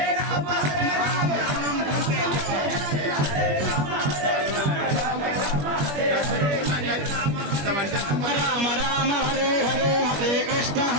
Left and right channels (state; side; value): late; left; 21 ms